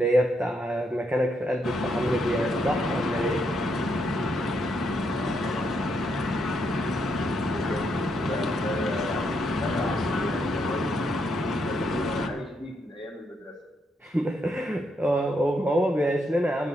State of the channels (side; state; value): both; normal; correlation 0.78